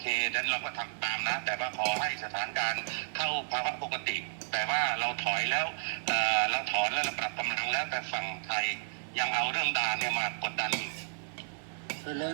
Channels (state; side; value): silent; left; digital silence